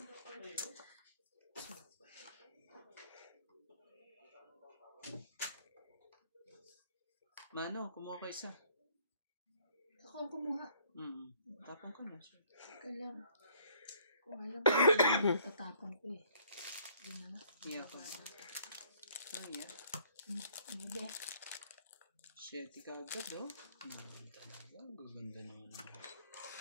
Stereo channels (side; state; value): both; inverted; correlation -0.61